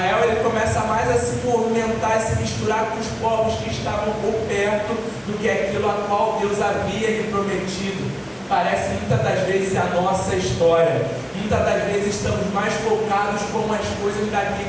ele começa mais a se movimentar e se misturar com os povos que estavam por perto do que aquilo a qual Deus havia lhe prometido. Parece muitas das vezes a nossa história. Muitas das vezes estamos mais focados com as coisas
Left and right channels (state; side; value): identical; both; correlation 1.00